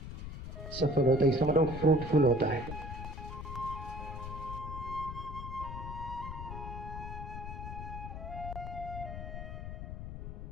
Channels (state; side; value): noise; left; rumble, 8 dB below the sound